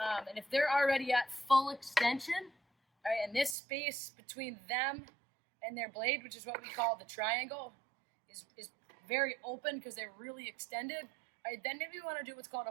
And if they're already at full extension, right, and this space between them and their blade, which is what we call the triangle, is very open because they're really extended, right, then maybe we want to do what's called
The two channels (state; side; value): drops out; left; at 3.6 s